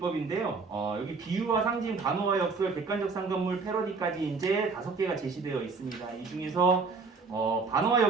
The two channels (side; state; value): left; quieter; 4.5 dB